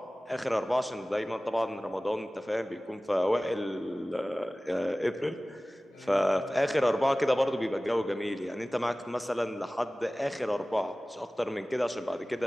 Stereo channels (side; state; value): both; normal; correlation 0.98